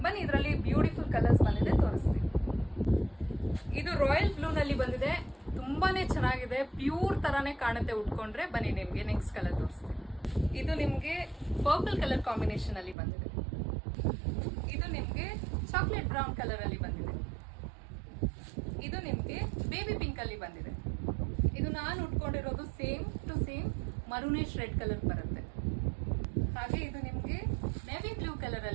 ಬನ್ನಿ, ಇದರಲ್ಲಿ ಬ್ಯೂಟಿಫುಲ್ ಕಲರ್ಸ್ ಬಂದಿದೆ, ತೋರಿಸ್ತೀನಿ. ಇದು ರಾಯಲ್ ಬ್ಲೂ ನಲ್ಲಿ ಬಂದಿದೆ. ತುಂಬಾನೇ ಚೆನ್ನಾಗಿದೆ. ಪ್ಯೂರ್ ತರಾನೇ ಕಾಣುತ್ತೆ ಉಟ್ಕೊಂಡ್ರೆ. ಬನ್ನಿ, ನಿಮ್ಗೆ ನೆಕ್ಸ್ಟ್ ಕಲರ್ ತೋರಿಸ್ತೀನಿ. ಇದು ನಿಮ್ಗೆ ಪರ್ಪಲ್ ಕಲರ್ ಕಾಂಬಿನೇಷನ್ ಅಲ್ಲಿ ಬಂದಿದೆ. ಇದು ನಿಮ್ಗೆ ಚಾಕ್ಲೇಟ್ ಬ್ರೌನ್ ಕಲರ್ ಅಲ್ಲಿ ಬಂದಿದೆ. ಇದು ನಿಮ್ಗೆ ಬೇಬಿ ಪಿಂಕ್ ಅಲ್ಲಿ ಬಂದಿದೆ. ಇದು ನಾನು ಉಟ್ಕೊಂಡಿರೋದು same to same maroonish red colour ಬರುತ್ತೆ. ಹಾಗೆ ಇದು ನಿಮ್ಗೆ ನೇವಿ ಬ್ಲೂ ಕಲರ್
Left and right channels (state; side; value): drops out; left; at 13.0 s